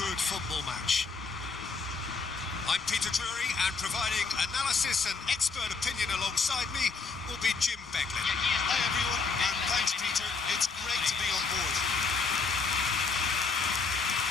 football match. I'm Peter Drury, and providing analysis and expert opinion alongside me will be Jim Beglin. Hi everyone, and thanks Peter. It's great to be on board.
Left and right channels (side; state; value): right; quieter; 4.5 dB